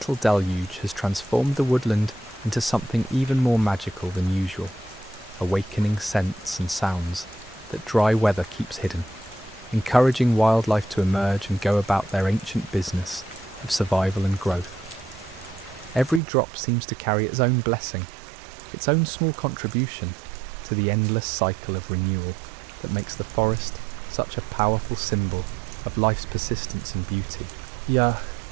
deluge has transformed the woodland into something even more magical than usual, awakening scents and sounds that dry weather keeps hidden, encouraging wildlife to emerge and go about their ancient business of survival and growth. Every drop seems to carry its own blessing, its own small contribution to the endless cycle of renewal that makes the forest such a powerful symbol of life's persistence and beauty.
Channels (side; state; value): left; drops out; at 16.2 s